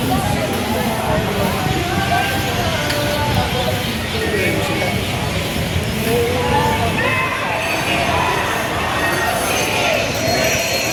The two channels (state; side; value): identical; both; correlation 1.00